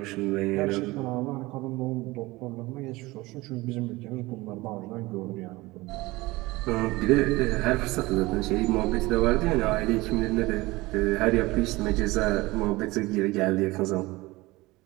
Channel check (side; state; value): left; quieter; 21.0 dB